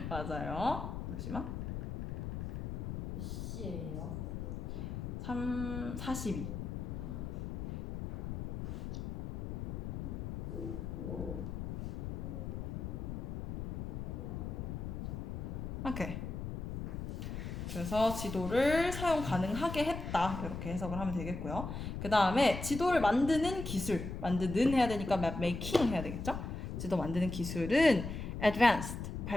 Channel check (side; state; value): left; noise; rumble, 5 dB below the sound